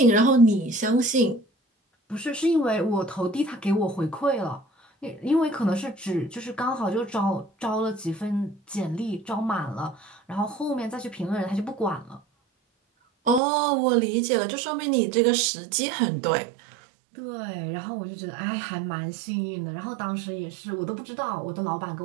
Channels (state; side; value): drops out; left; at 13.4 s